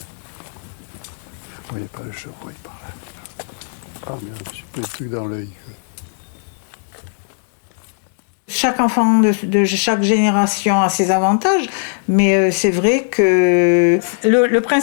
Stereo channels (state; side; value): silent; right; 65 dB below the other